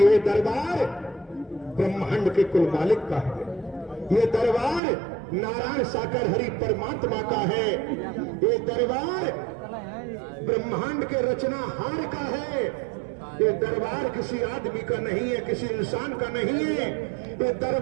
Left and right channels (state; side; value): drops out; left; at 4.8 s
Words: दरबार ब्रह्मांड के कुल मालिक का है, ये दरबार नारायण साकर हरि परमात्मा का है, ये दरबार ब्रह्मांड के रचनाहार का है, ये दरबार किसी आदमी का नहीं है, किसी इंसान का नहीं है, ये